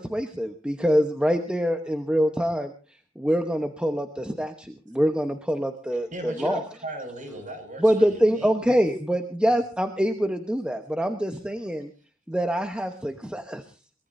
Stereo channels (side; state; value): both; normal; correlation 0.92